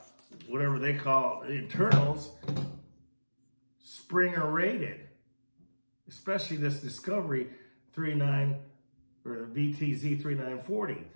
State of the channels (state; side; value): inverted; both; correlation -1.00